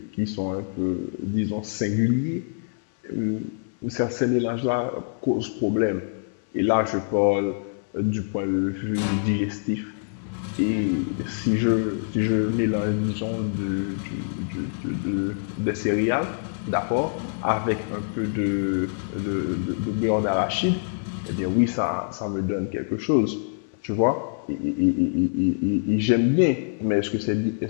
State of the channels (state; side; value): silent; right; 62 dB below the other